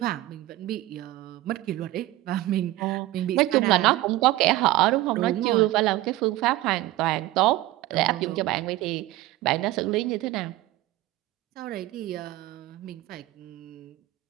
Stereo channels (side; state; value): left; quieter; 17.0 dB